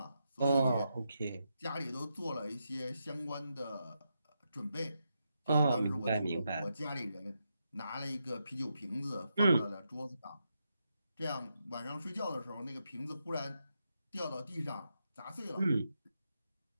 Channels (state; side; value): inverted; both; correlation -0.84